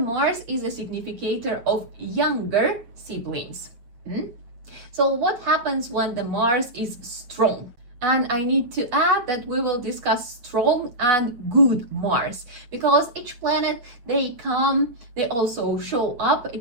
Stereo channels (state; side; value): late; left; 8.5 ms